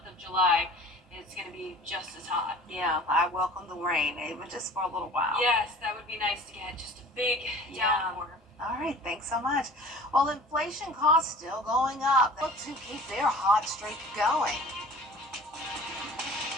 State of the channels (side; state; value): both; normal; correlation 0.45